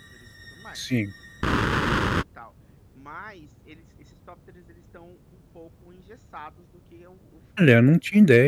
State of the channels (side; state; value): both; identical; correlation 1.00